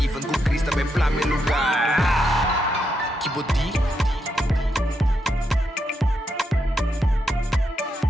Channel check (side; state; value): both; normal; correlation 0.81